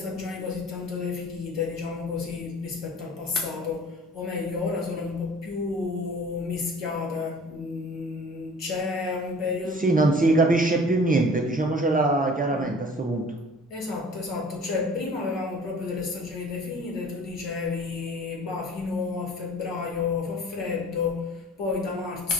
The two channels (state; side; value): normal; both; correlation 0.47